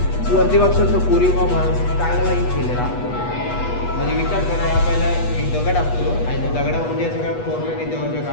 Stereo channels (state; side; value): late; right; 8.2 ms